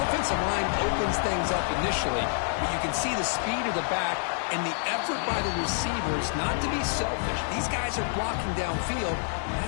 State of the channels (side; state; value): right; silent; digital silence